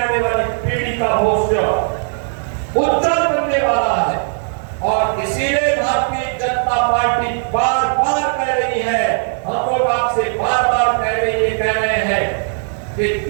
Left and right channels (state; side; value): silent; left; 68 dB below the other